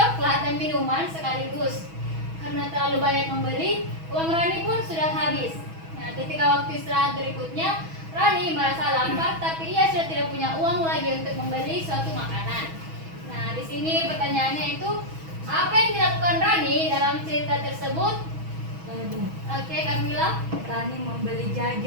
dan minuman sekaligus. Karena terlalu banyak membeli, uang Rani pun sudah habis. Nah, ketika waktu istirahat berikutnya, Rani merasa lapar, tapi ia sudah tidak punya uang lagi untuk membeli suatu makanan. Nah, di sini pertanyaannya itu, apa yang dilakukan Rani dalam cerita tersebut? Oke, Kamila. Rani membeli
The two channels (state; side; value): late; left; 6.2 ms